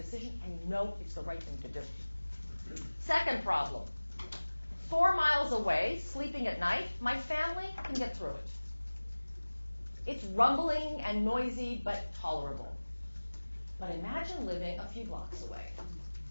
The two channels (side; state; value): both; inverted; correlation -1.00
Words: and you know it's the right thing to do. Second problem. 4 miles away, sleeping at night, my family can get through it. It's rumbling and noisy, but tolerable. But imagine living a few blocks away,